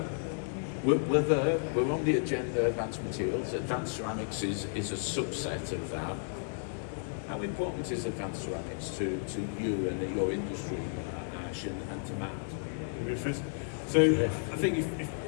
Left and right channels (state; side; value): silent; right; 56 dB below the other